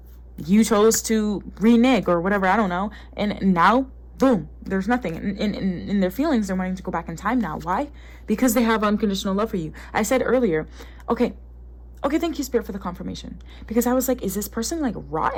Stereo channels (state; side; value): identical; both; correlation 1.00